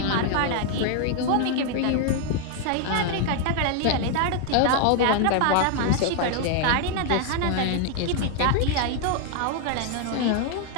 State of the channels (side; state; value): both; different; correlation 0.00